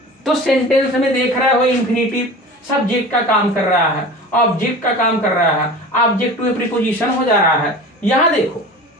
तो सेंटेंस में देख रहे हो इन्फिनिटिव सब्जेक्ट का काम कर रहा है, ऑब्जेक्ट का काम कर रहा है, ऑब्जेक्ट टू प्रीपोजिशन हो जा रहा है। यहां देखो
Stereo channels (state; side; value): normal; both; correlation 0.36